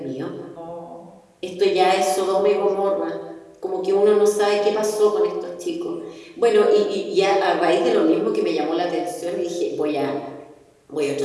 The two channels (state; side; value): identical; both; correlation 1.00